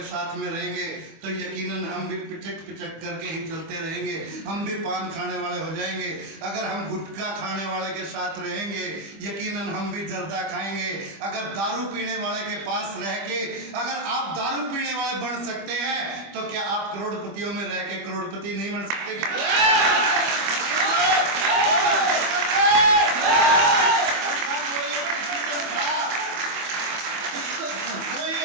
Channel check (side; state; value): left; late; 25 ms